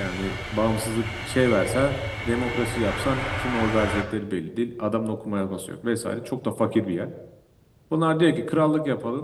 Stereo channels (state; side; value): identical; both; correlation 1.00